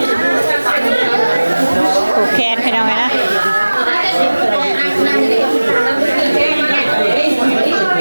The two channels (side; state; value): both; inverted; correlation -1.00